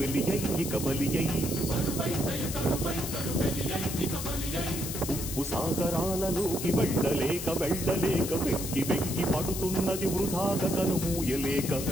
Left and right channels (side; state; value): left; noise; hiss, 6 dB below the sound